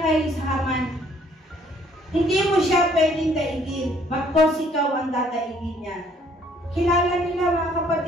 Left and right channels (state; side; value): normal; both; correlation 0.62